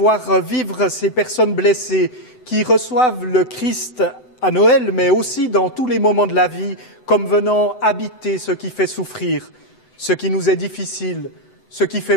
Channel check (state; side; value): late; right; 7.9 ms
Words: vivre ces personnes blessées qui reçoivent le Christ à Noël, mais aussi dans tous les moments de la vie, comme venant habiter ce qui fait souffrir, ce qui nous est difficile, ce qui